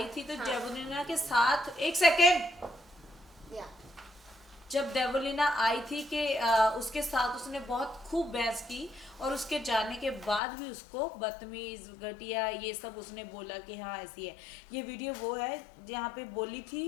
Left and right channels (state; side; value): drops out; right; at 10.4 s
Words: थी तो हाँ। देवलीना के साथ, एक सेकेंड, या जब देवलीना आई थी कि उसके साथ उसने बहुत खूब बहस की, और उसके जाने के बाद भी उसको बदतमीज, घटिया, ये सब उसने बोला कि हाँ ऐसी है। ये वीडियो वो है जहाँ पे बोली